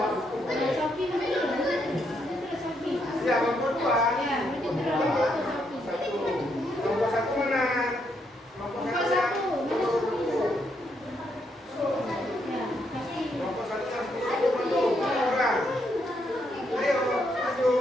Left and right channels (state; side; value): normal; both; correlation 0.76